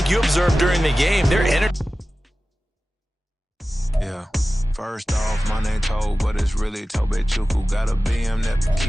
you observed during the game, their energy. Yeah. First off, my name Toad, but it's really Tobe Chuku. Got a BM that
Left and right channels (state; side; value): normal; both; correlation 0.96